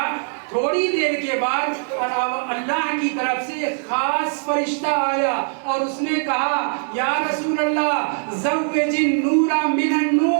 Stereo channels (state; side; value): silent; left; 65 dB below the other